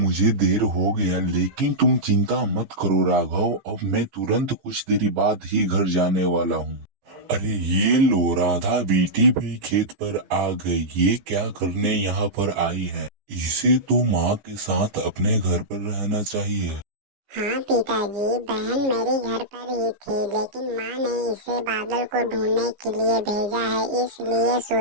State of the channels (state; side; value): late; left; 15 ms